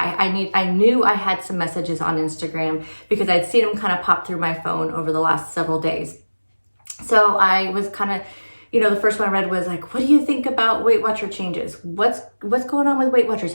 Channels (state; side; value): inverted; both; correlation -1.00